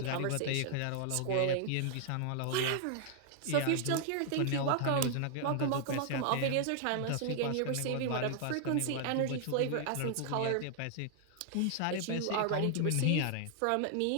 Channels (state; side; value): different; both; correlation 0.00